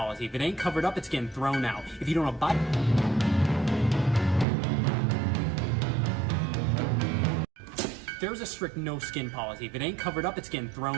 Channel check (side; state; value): left; drops out; at 4.5 s